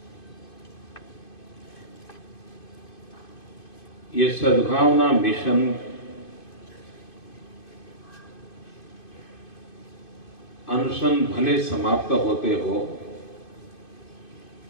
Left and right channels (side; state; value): right; late; 2.5 ms